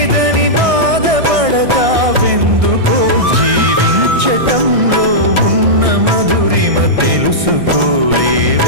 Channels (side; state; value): left; late; 1.6 ms